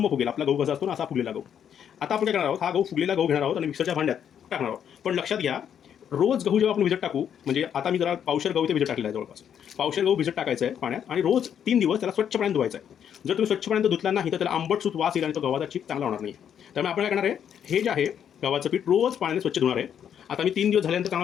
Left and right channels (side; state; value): right; quieter; 8.8 dB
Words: फुगेल. आपला गहू कसा असतो ना असा फुगलेला गहू. आता आपण काय करणार आहोत, हा गहू फुगलेला गहू घेणार आहोत आणि मिक्सरच्या भांड्यात टाकणार आहोत. पण लक्षात घ्या, रोज गहू जेव्हा आपण भिजत टाकू, म्हणजे आता मी जरा पावशेर गहू ते भिजत टाकलेला आहे, जवळपास पावशेर गहू भिजत टाकायचं आहे पाण्यात आणि रोज 3 दिवस त्याला स्वच्छ पाण्यात धुवायचं आहे. जर तुम्ही स्वच्छ पाण्यात धुतला नाही तर त्याला आंबट सूत वास येईल आणि तो गव्हाचा चीक चांगला होणार नाही. त्यामुळे आपण काय करणार आहे, हे जे आहे गव्हाचं पीठ रोज पाण्याने स्वच्छ धुणार आहे. आता मी 3 दिवस झाल्यानंतर